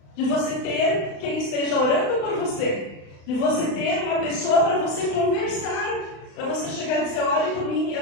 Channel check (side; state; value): right; late; 35 ms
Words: de você ter quem esteja orando por você, de você ter uma pessoa para você conversar, para você chegar e dizer, olhe por mim,